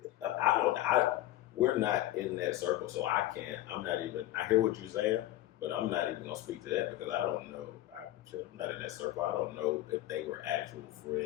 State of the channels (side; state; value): right; quieter; 14.9 dB